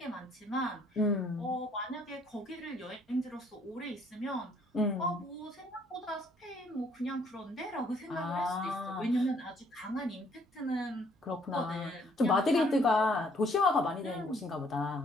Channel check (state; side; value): normal; both; correlation 0.64